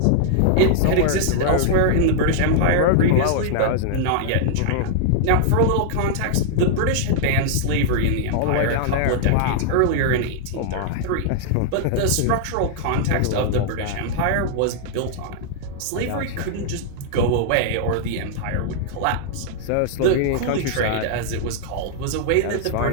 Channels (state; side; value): different; both; correlation -0.01